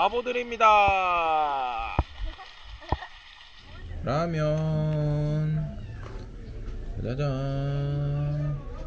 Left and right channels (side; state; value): both; identical; correlation 1.00